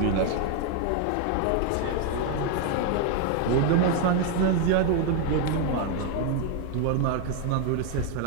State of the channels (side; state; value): both; different; correlation 0.01